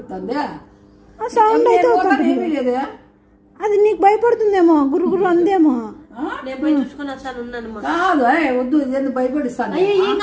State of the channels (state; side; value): identical; both; correlation 1.00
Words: సౌండ్ అయితే ఏమీ లేదే. అది నీకు భయపడుతుందేమో, గుర్రు గుర్రు అందేమో. నేను పోయి చూసుకొని వస్తాను, ఉన్నాను. కాదు వద్దు, ఇది ఎందుకు భయపడిస్తాను? ఏం